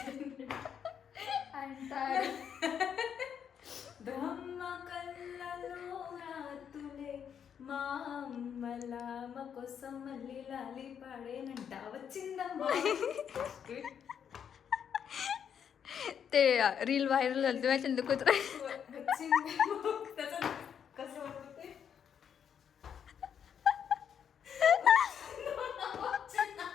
ब्रह्म कल्ललो रातुले మా అమ్మలా మా కోసం మళ్ళీ లాలి పాడేనంట వచ్చిందమ్మా. ते रील व्हायरल झाली तेव्हा चंद कुत्रा त्याचं कसं होतं ते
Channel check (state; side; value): quieter; right; 8.1 dB